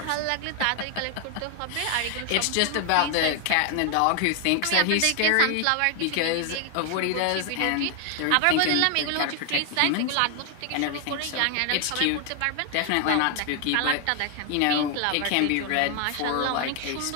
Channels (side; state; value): both; different; correlation 0.00